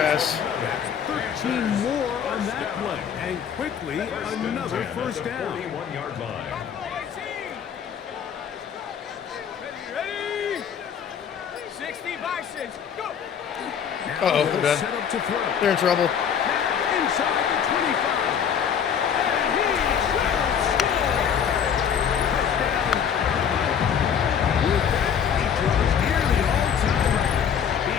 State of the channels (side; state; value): right; quieter; 7.9 dB